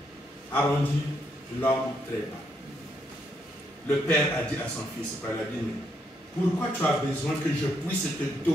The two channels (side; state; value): both; normal; correlation 0.75